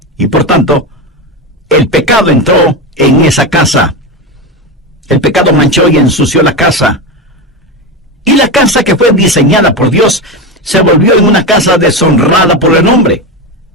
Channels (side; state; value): both; normal; correlation 0.17